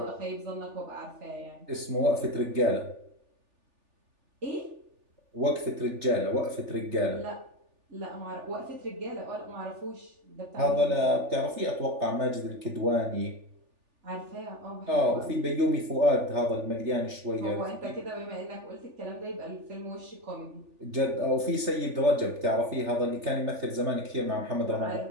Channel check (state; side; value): late; left; 3.4 ms